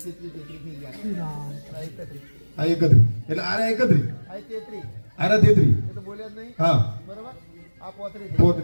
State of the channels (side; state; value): both; inverted; correlation -1.00